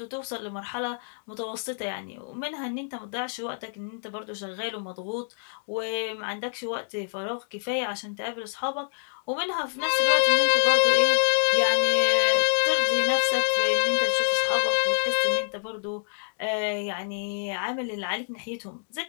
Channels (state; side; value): silent; right; digital silence